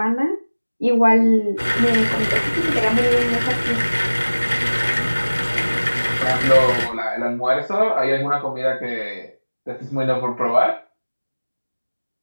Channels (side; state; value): both; inverted; correlation -1.00